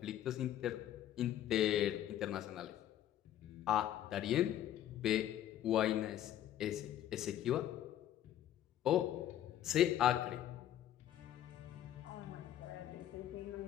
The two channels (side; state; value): right; quieter; 11.8 dB